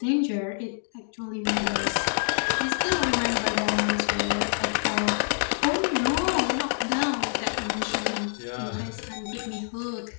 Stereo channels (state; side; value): silent; right; digital silence